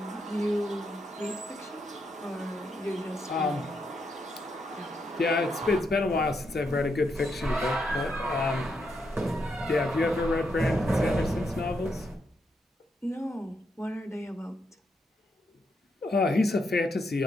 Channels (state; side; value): normal; both; correlation 0.80